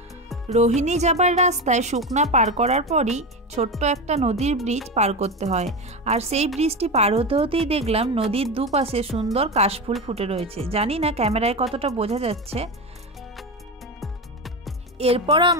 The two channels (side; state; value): both; normal; correlation 0.19